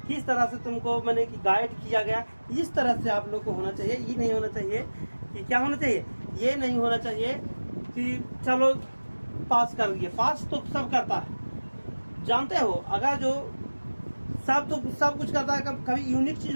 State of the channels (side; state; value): both; inverted; correlation -1.00